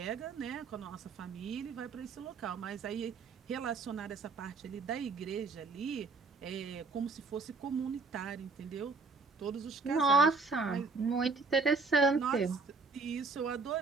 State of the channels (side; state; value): left; quieter; 4.1 dB